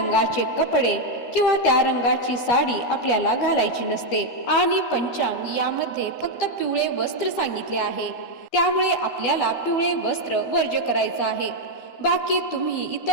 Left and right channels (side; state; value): right; late; 12 ms